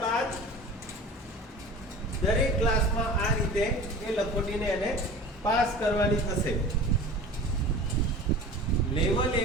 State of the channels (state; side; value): normal; both; correlation 0.38